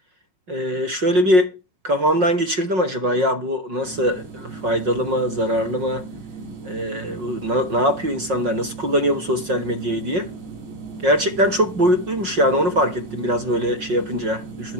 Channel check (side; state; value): left; late; 5.5 ms